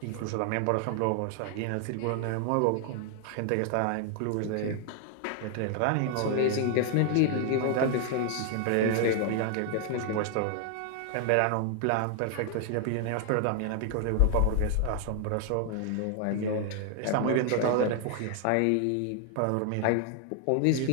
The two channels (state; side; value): different; both; correlation 0.00